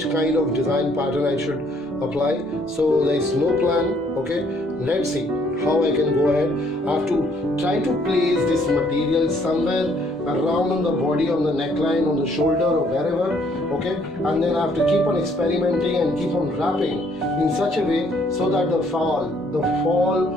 kind of design pattern I should apply. So there is no plan. Okay, let's see how I can go ahead. I have to try to place this material somewhere around on the body, on the neckline, on the shoulder or wherever. Okay, and then I have to keep on experimenting and keep on wrapping in such a way so that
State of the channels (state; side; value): normal; both; correlation 0.65